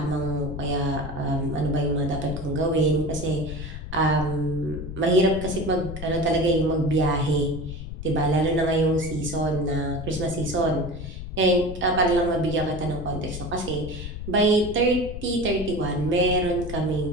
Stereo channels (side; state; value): left; noise; rumble, 8 dB below the sound